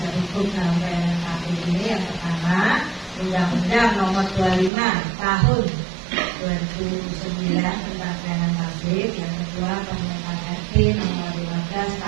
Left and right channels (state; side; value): drops out; left; at 4.7 s